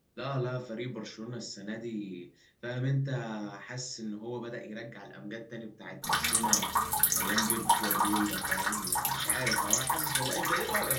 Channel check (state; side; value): identical; both; correlation 1.00